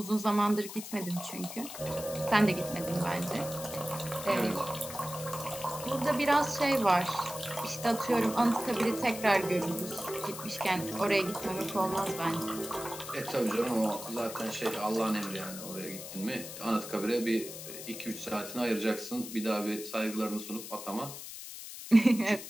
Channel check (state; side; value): noise; left; hiss, 11 dB below the sound